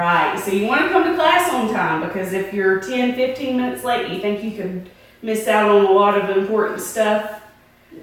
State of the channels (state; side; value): identical; both; correlation 1.00